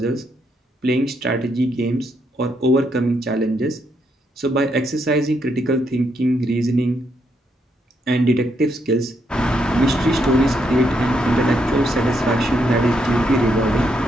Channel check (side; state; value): both; normal; correlation 0.77